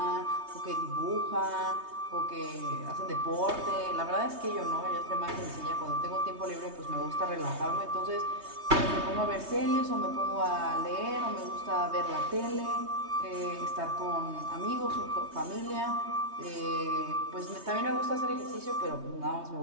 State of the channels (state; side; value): late; left; 3.2 ms